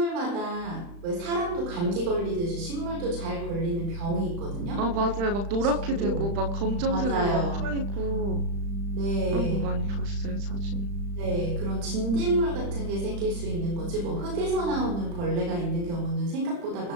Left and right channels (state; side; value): late; left; 35 ms